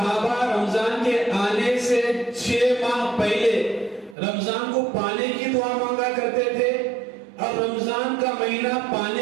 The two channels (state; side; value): drops out; left; at 4.2 s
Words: رمضان کے آنے سے 6 ماہ پہلے رمضان کو پانے کی دعا مانگا کرتے تھے، اور رمضان کا مہینہ